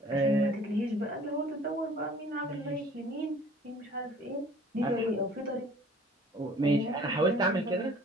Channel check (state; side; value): normal; both; correlation 0.51